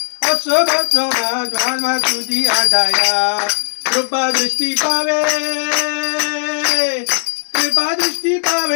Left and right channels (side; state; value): right; silent; digital silence